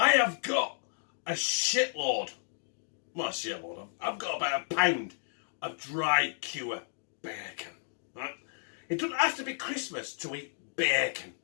have got a shitload. Well, a shitload. I've got about a pound of dry cure bacon, right? It doesn't have to be Christmas to eat bacon.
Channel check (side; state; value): right; silent; digital silence